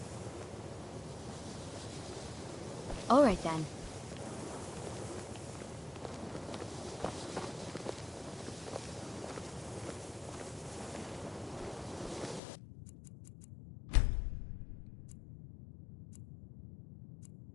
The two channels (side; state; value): right; drops out; at 12.4 s